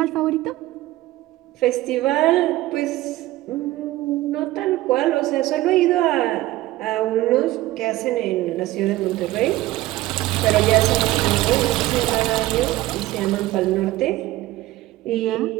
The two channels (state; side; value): quieter; left; 17.0 dB